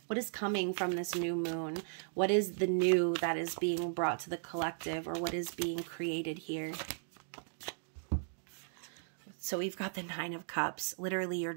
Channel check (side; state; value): left; silent; digital silence